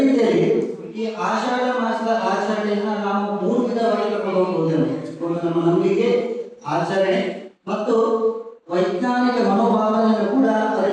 ರೀತಿಯಲ್ಲಿ ಈ ಆಷಾಢ ಮಾಸದ ಆಚರಣೆಯನ್ನ ನಾವು 3 ವಿಧವಾಗಿ ತಗೊಂಡು ಹೋಗುವುದೇನು. ನಮ್ಮ ನಂಬಿಕೆ, ಆಚರಣೆ ಮತ್ತು ವೈಜ್ಞಾನಿಕ ಮನೋಭಾವನೆಯನ್ನು ಕೂಡ ಅದರ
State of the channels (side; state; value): both; identical; correlation 1.00